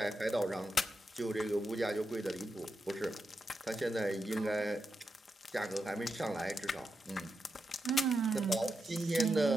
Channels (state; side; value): normal; both; correlation 0.86